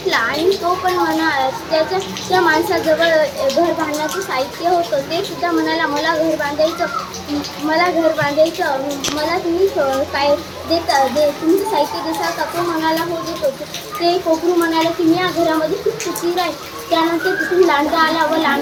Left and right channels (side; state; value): both; identical; correlation 1.00